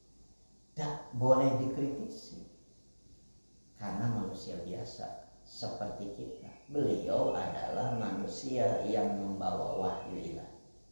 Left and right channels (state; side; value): inverted; both; correlation -1.00